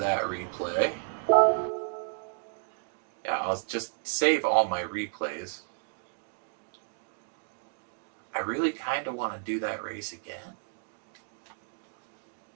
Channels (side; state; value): left; silent; digital silence